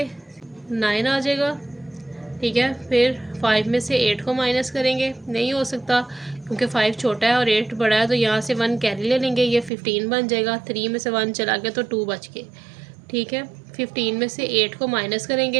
9 आ जाएगा। ठीक है, फिर 5 में से 8 को माइनस करेंगे, नहीं हो सकता क्योंकि 5 छोटा है और 8 बड़ा है, तो यहाँ से 1 कैरी ले लेंगे, ये 15 बन जाएगा। 3 में से 1 चला गया तो 2 बच गए। ठीक है, 15 में से 8 को माइनस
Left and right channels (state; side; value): drops out; left; at 9.7 s